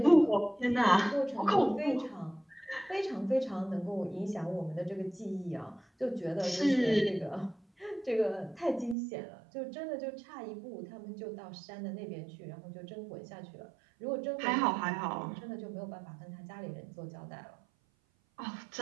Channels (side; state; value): left; drops out; at 9.0 s